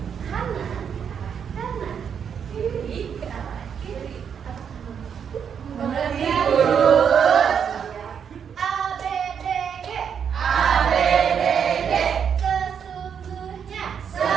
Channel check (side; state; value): left; quieter; 7.5 dB